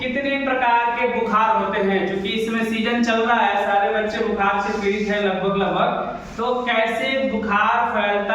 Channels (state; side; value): identical; both; correlation 1.00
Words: प्रकार के बुखार होते हैं। क्योंकि इसमें सीजन चल रहा है, सारे बच्चे बुखार से पीड़ित हैं लगभग। तो कैसे बुखार